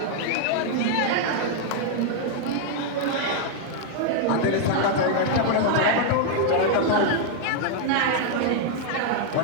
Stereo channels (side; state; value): both; different; correlation 0.00